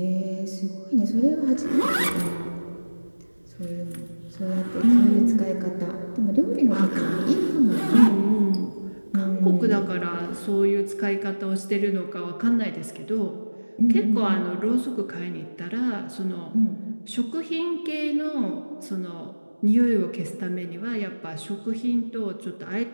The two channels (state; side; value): inverted; both; correlation -1.00